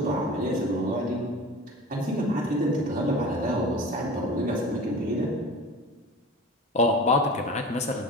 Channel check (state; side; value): normal; both; correlation 0.36